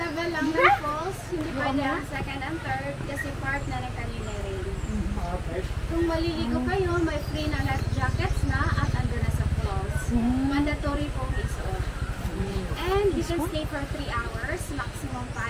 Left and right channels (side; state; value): both; identical; correlation 1.00